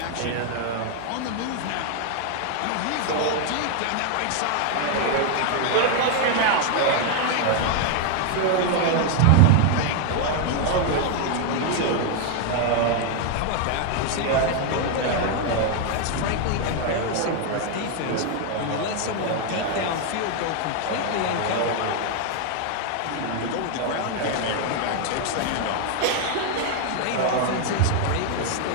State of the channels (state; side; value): different; both; correlation 0.00